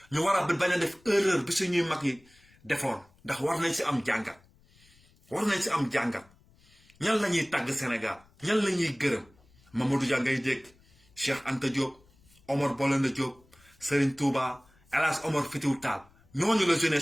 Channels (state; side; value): noise; left; rumble, 30 dB below the sound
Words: ñu war a bañ a def erreur bi suñuy mag yi defoon ndax war nañ si am jàngat ñan la ñuy tàgg Sénégal ñan la ñuy gërëm Mamadou Dia ngay dégg Cheikh Anta Diop Omar Blondin Diop Serigne Touba El Hadj Omar Foutiyou Tall ñooñu la